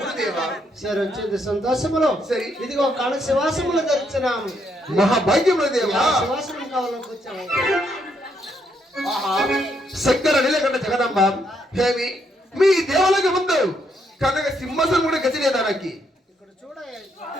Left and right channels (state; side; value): normal; both; correlation 0.75